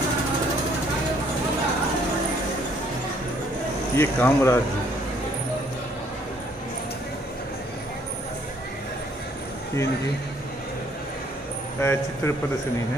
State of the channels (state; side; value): normal; both; correlation 0.64